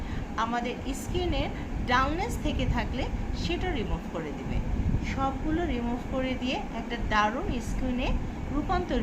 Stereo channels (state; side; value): identical; both; correlation 1.00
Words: আমাদের স্কিনের ডাউননেস থেকে থাকলে সেটা রিমুভ করে দিবে। সবগুলো রিমুভ করে দিয়ে একটা দারুণ স্কিনে